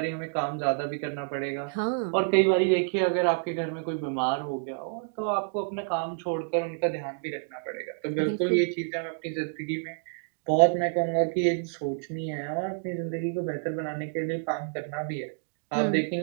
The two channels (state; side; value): silent; left; digital silence